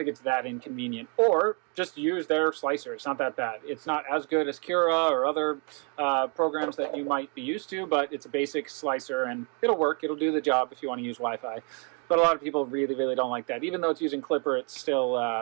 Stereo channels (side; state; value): left; quieter; 38.2 dB